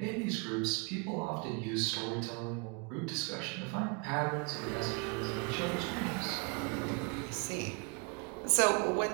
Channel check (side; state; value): left; quieter; 32.6 dB